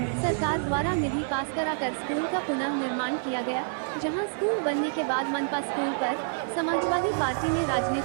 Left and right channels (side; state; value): left; silent; digital silence